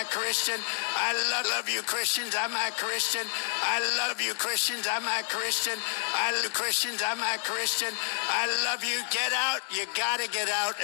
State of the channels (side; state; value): right; silent; digital silence